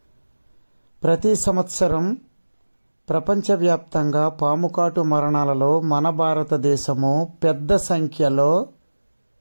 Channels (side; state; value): both; inverted; correlation -1.00